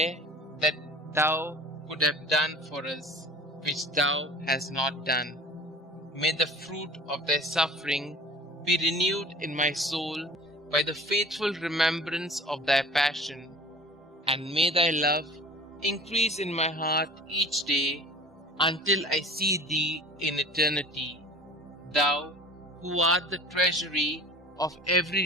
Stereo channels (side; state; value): both; normal; correlation 0.43